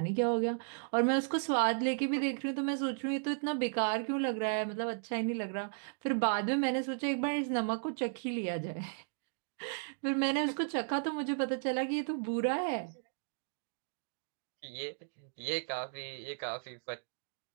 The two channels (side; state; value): left; silent; digital silence